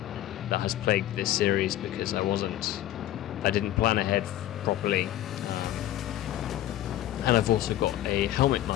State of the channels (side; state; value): right; quieter; 13.2 dB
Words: has plagued this series, because I didn't plan ahead properly. And I've also got a helmet